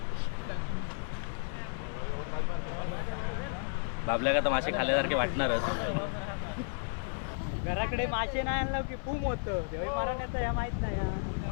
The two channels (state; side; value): silent; right; 56 dB below the other